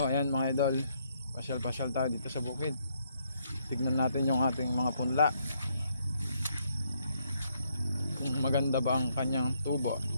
ayan mga idol, pasyal-pasyal tayo dito sa bukid. Tignan natin yung ating mga punla. Kung maganda ba ang kanyang tubo.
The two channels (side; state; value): both; inverted; correlation -0.73